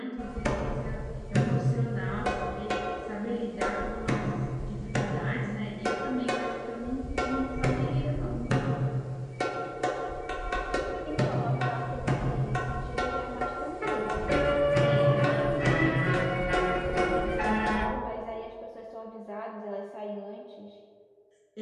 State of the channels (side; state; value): both; identical; correlation 1.00